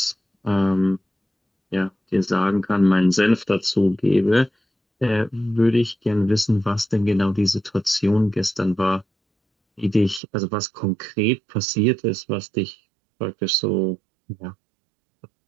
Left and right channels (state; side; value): drops out; left; at 10.2 s